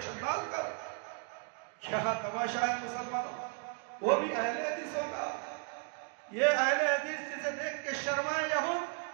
ڈال کر۔ کیا تماشا ہے مسلمانوں، وہ بھی اہل حدیثوں کا۔ یہ اہل حدیث جسے دیکھ کے شرمائے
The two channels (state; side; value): quieter; left; 39.1 dB